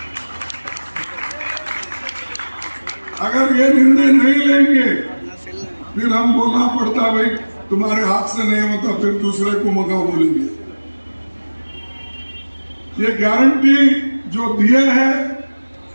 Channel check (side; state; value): both; inverted; correlation -1.00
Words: अगर ये निर्णय नहीं लेंगे फिर हम बोलना पड़ता भाई तुम्हारे हाथ से नहीं होता, फिर दूसरे को मगा बोलेंगे। ये गारंटी जो दिए है